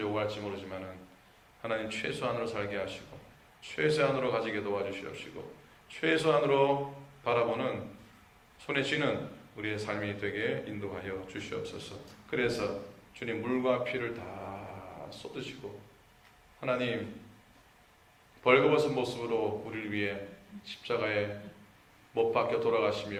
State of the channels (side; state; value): both; identical; correlation 1.00